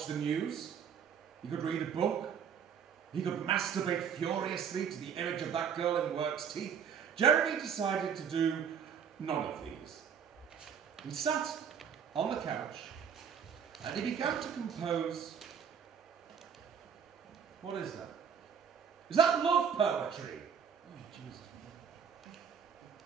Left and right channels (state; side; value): quieter; left; 7.4 dB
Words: the news. He could read a book. He could masturbate furiously to the image of that girl in work's teeth. Jeremy decided to do none of these. He sat on the couch and he began to compose. What is that? Is that love poetry? Oh, Jesus.